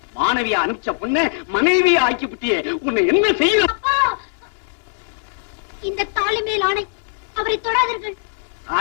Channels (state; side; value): silent; right; digital silence